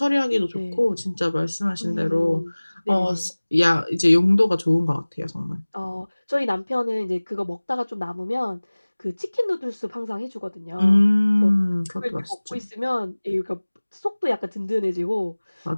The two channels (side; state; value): both; inverted; correlation -1.00